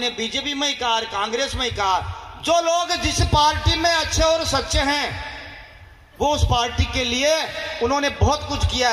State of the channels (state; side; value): identical; both; correlation 1.00